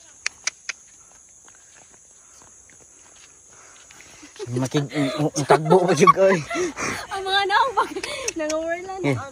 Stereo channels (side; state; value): both; identical; correlation 1.00